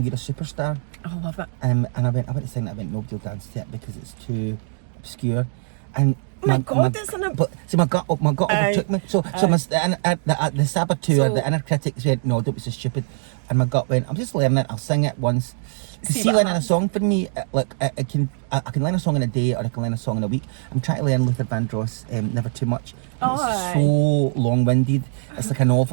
You're a Superstar? I love it. And I went to sing that, I went, nobody will dance to it because it's too obscure. And my God, isn't it? But see, my gut overtook me. So the saboteur, the inner critics went, no, don't be so stupid. And my gut went, I'm just learning it, I'll sing it once. See, learning a song for me, I can learn a song in a day, or I can learn a song in a week. I'm trying to learn Luther Vandross, Never Too Much. It's so long-winded. It's like a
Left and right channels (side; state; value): left; silent; digital silence